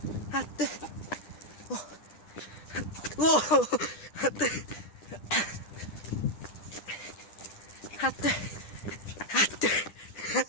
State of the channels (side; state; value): right; late; 10 ms